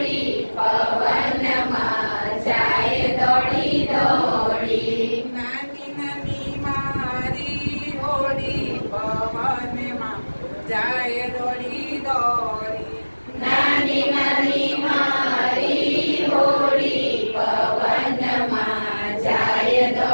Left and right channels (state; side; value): inverted; both; correlation -1.00